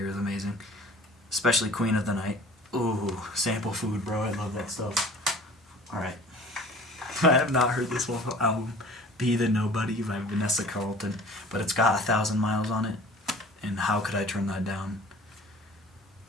is amazing. Especially Queen of the Night. Ooh, Sample Food, bro. I love that stuff. Alright. I have not heard this whole album, Be the Nobody by Vanessa Carlton, but it's got 1,000 Miles on it, and how could I turn that down?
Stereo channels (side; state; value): both; normal; correlation 0.46